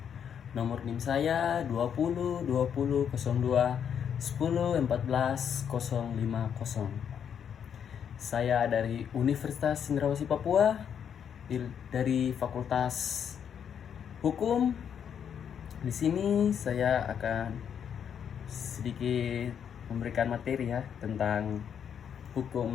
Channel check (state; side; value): quieter; right; 8.1 dB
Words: Nomor NIM saya 20 20 02 10 14 050. Saya dari Universitas Cendrawasih Papua, dari Fakultas Hukum. Di sini saya akan sedikit memberikan materi tentang hukum